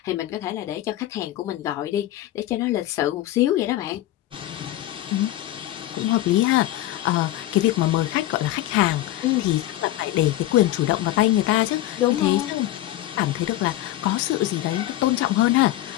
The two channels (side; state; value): right; quieter; 14.7 dB